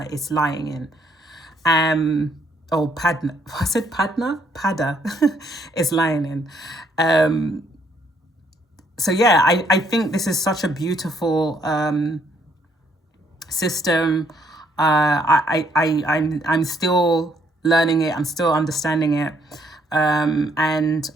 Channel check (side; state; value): both; normal; correlation 0.69